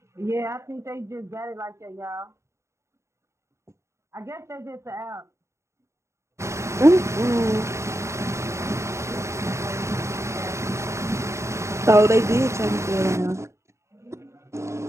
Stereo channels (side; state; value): left; late; 0.14 ms